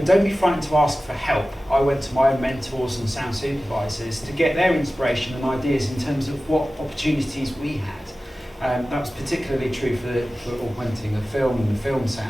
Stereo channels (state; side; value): normal; both; correlation 0.96